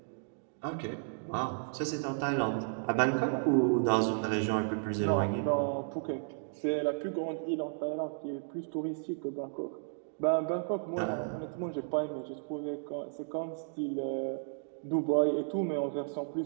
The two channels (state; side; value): silent; left; digital silence